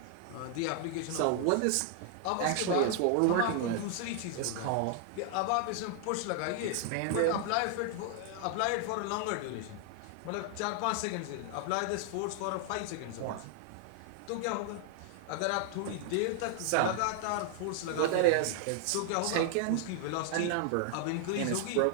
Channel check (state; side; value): different; both; correlation 0.00